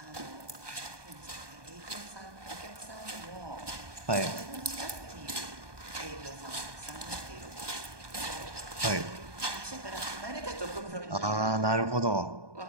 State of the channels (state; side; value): late; left; 1.2 ms